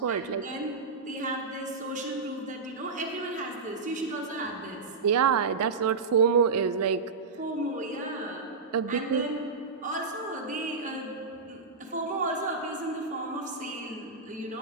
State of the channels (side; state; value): left; quieter; 4.5 dB